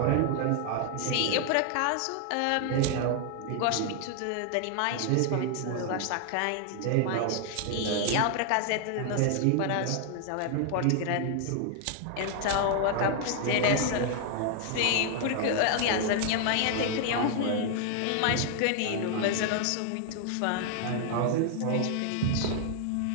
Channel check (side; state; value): both; different; correlation 0.00